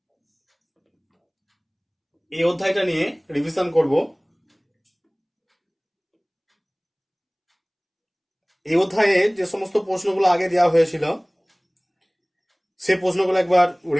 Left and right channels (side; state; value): both; identical; correlation 1.00